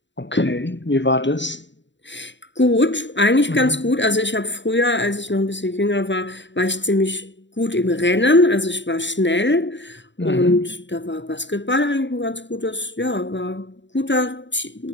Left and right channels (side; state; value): right; late; 0.53 ms